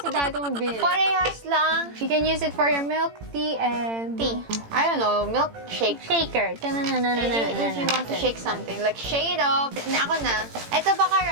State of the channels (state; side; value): late; left; 18 ms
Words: dati mong binili. Parehas lang. You can use it for your milk tea and... Tea. I don't know, milk shake. Shaker. If you want to shake something, like shake it up. Ako na. Ito baka